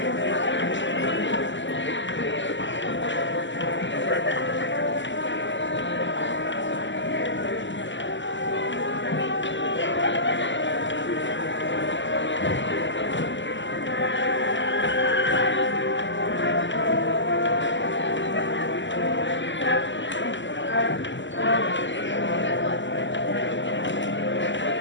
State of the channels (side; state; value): right; late; 0.54 ms